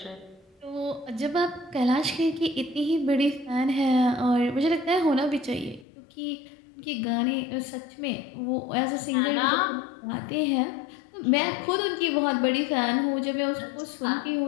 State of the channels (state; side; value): drops out; right; at 5.9 s